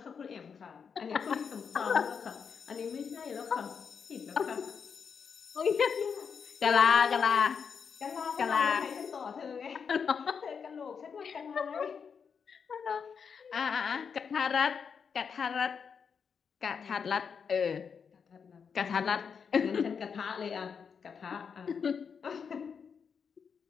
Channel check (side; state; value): right; quieter; 6.4 dB